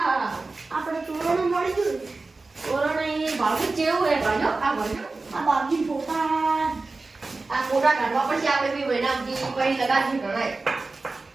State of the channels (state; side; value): quieter; left; 3.6 dB